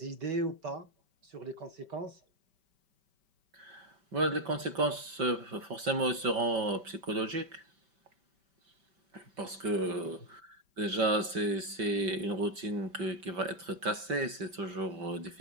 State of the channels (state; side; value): late; left; 5.2 ms